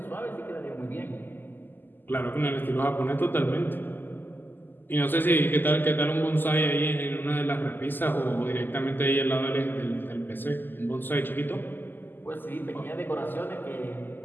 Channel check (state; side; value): late; right; 0.091 ms